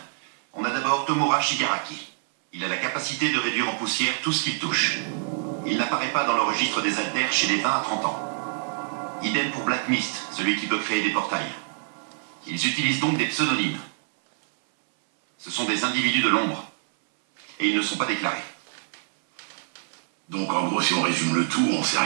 On a d'abord Tomura Shigaraki. Il a la capacité de réduire en poussière tout ce qu'il touche. Il n'apparaît pas dans le registre des alters chez les 20 à 30 ans. Idem pour Black Mist, celui qui peut créer des portails. Ils utilisent donc des pseudonymes. Ce sont des individus de l'ombre. Et ils ne sont pas déclarés. Donc en gros, si on résume le tout, on sait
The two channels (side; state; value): left; silent; 61 dB below the other